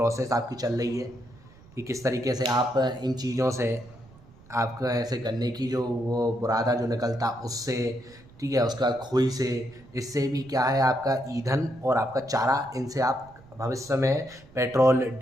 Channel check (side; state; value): right; noise; rumble, 24 dB below the sound